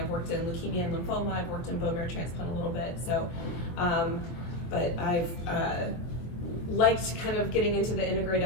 worked in leukemia and lymphoma. I've worked in bone marrow transplant a little bit. So, but I've liked kind of getting into the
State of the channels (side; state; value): right; late; 23 ms